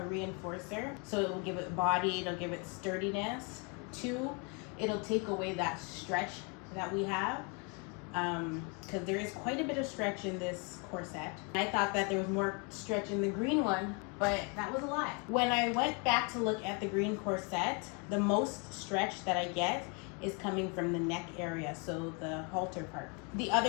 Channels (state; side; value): quieter; right; 33.9 dB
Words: reinforcer. So it will give it body, it'll give it sturdiness. Two, it'll take away that stretch that we have, because there is quite a bit of stretch in this corset. I thought that there was more stretch in the green one, but that was a lie. When I went back to look at the green corset, the most stretch that I get is coming from the neck area, so the halter part. The